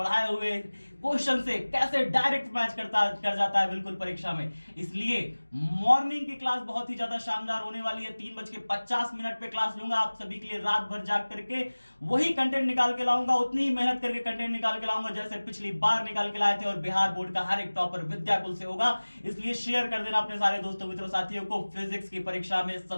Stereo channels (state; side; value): inverted; both; correlation -1.00